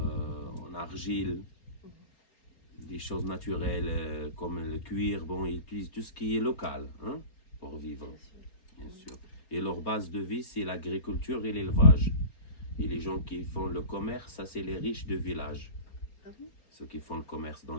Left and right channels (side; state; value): right; late; 4.3 ms